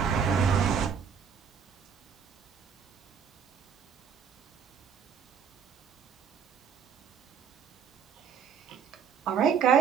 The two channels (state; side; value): quieter; left; 7.2 dB